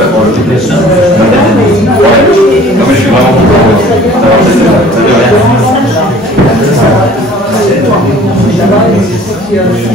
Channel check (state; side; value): normal; both; correlation 0.50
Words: pour le TPS. Ouais. Non, mais je suis vraiment content d'avoir cette